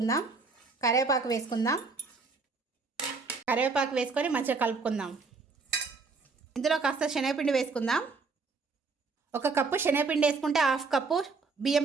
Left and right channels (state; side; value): quieter; left; 4.3 dB